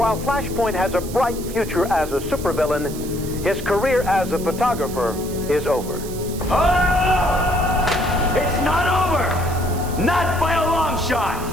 Flashpoint has a bright future as a supervillain, his career as a photographer is over. Oh! It's not over! Not by a long shot!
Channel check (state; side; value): noise; right; hiss, 14 dB below the sound